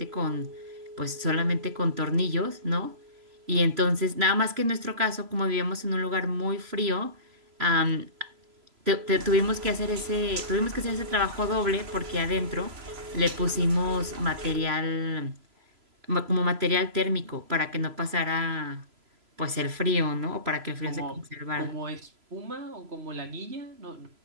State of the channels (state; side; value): late; left; 3.0 ms